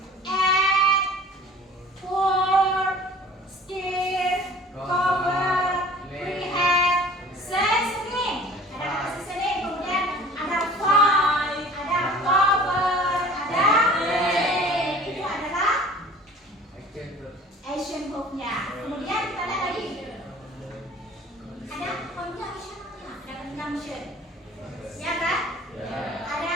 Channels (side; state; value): both; normal; correlation 0.47